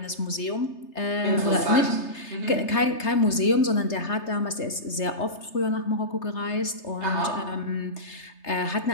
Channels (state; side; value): late; right; 3.3 ms